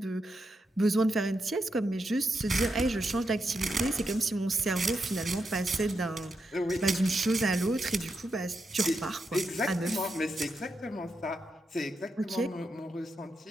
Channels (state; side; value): normal; both; correlation 0.85